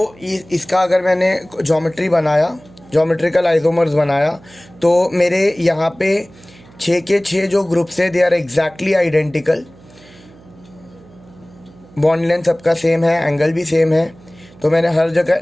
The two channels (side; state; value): right; noise; hum, 25 dB below the sound